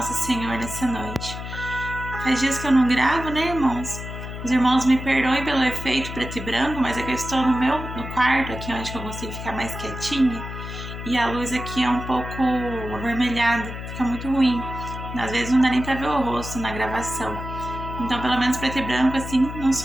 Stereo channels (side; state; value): left; noise; hum, 8 dB below the sound